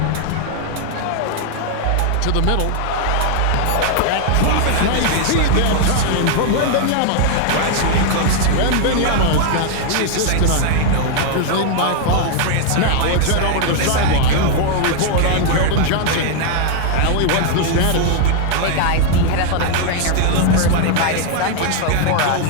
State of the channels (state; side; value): different; both; correlation 0.00